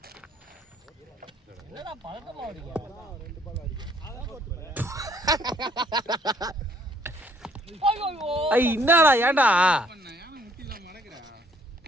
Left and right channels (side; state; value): both; normal; correlation 0.63